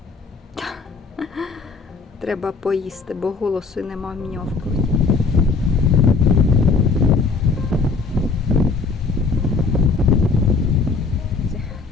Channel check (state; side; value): quieter; right; 4.5 dB